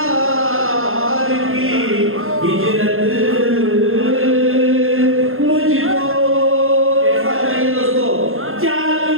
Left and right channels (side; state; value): left; late; 0.61 ms